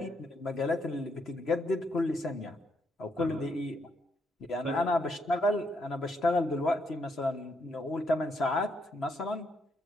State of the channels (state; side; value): normal; both; correlation 0.76